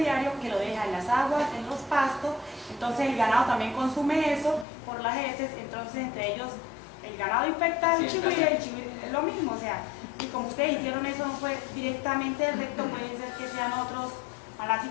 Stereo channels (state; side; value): drops out; right; at 4.7 s